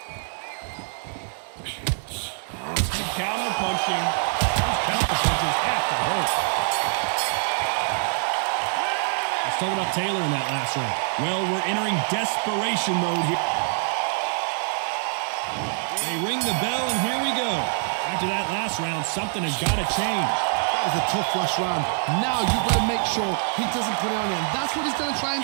Counter punching. Those counter punches have to hurt. Let's talk about Taylor in that last round. Well, we're entering desperation mode here. They ring the bell, and here we go. After that last round, something has got to change. That was a tough last round. Now you've got to make sure he doesn't put it on him. That's what he's going to try and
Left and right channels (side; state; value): left; silent; 59 dB below the other